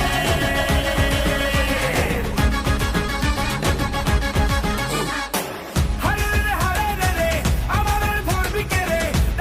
হারে রে হারে রে রে আমাদের ধরবি কে রে,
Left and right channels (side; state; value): both; identical; correlation 1.00